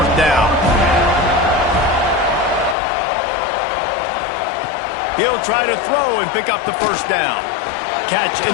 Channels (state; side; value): drops out; right; at 2.8 s